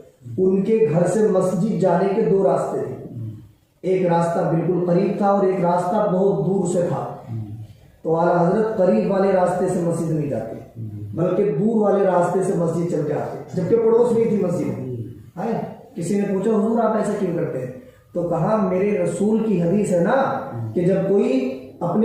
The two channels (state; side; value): identical; both; correlation 1.00